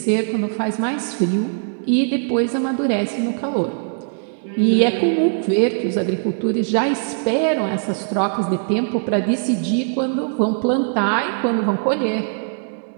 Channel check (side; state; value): left; silent; digital silence